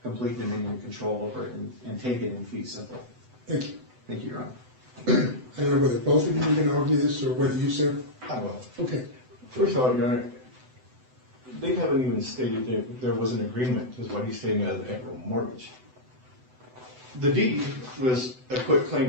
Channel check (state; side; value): late; left; 7.9 ms